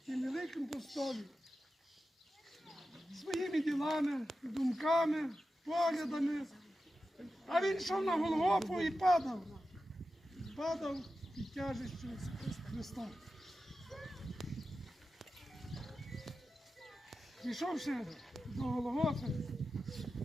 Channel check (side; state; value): both; normal; correlation 0.92